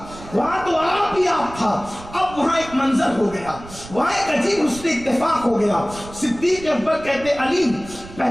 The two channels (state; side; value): noise; right; rumble, 16 dB below the sound